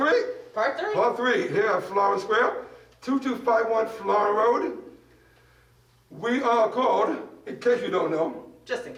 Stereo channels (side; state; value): both; identical; correlation 1.00